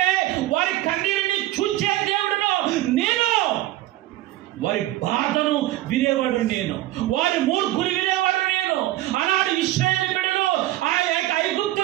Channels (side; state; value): left; quieter; 15.8 dB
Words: వారి కన్నీరుని చూచే దేవుడును నేను, వారి బాధను వినేవాడు నేను, వారి మూర్ఖుని వినేవాడు నేను. ఆనాడు ఇశ్రాయేలు బిడ్డలు ఆ యొక్క